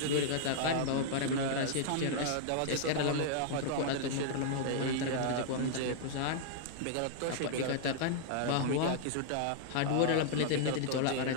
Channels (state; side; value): different; both; correlation -0.01